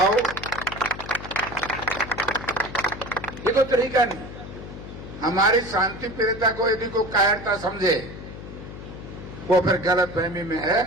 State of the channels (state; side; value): noise; left; hum, 12 dB below the sound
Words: ये तो तरीका नहीं। हमारी शांति प्रियता को यदि कोई कायरता समझे, वो फिर गलत फहमी में है।